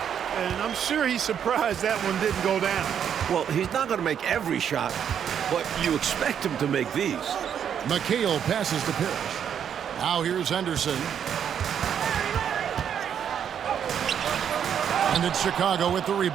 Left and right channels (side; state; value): left; quieter; 8.5 dB